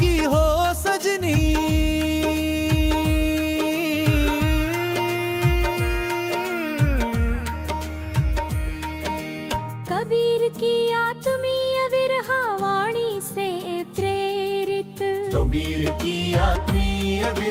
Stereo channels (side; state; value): both; identical; correlation 1.00